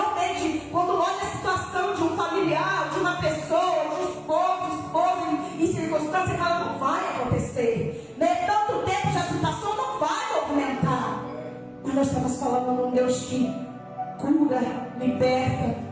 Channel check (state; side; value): identical; both; correlation 1.00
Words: quando olha a situação de um familiar, de uma pessoa, de um esposo em circunstância, fala, não vai acontecer. Né? Tanto tempo já se passou, não vai movimentar. Mas nós estamos falando de um Deus que cura, liberta,